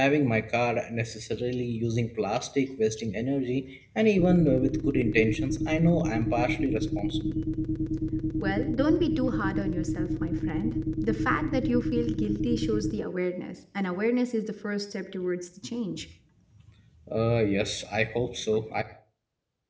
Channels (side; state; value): both; identical; correlation 1.00